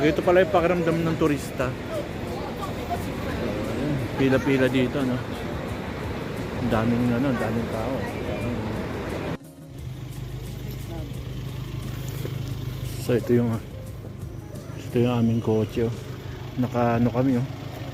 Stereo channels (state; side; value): identical; both; correlation 1.00